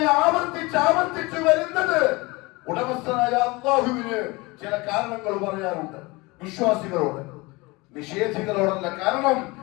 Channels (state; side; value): quieter; right; 23.9 dB